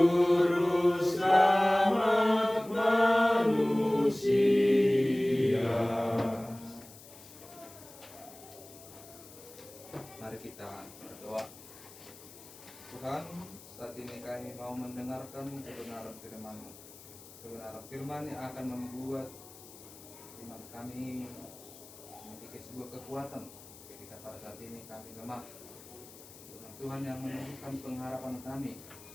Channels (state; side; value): noise; left; hiss, 19 dB below the sound